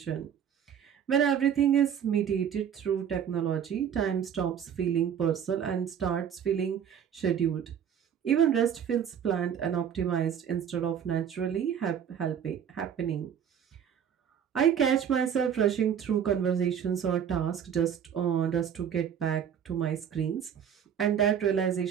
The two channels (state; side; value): quieter; left; 8.5 dB